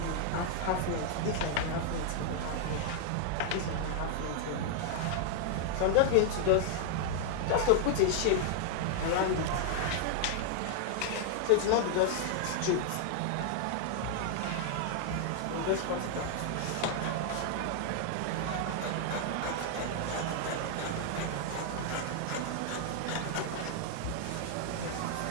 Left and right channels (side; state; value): both; different; correlation 0.00